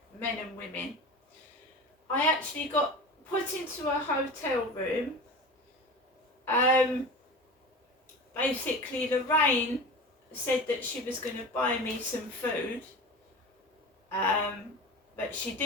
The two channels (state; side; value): normal; both; correlation 0.32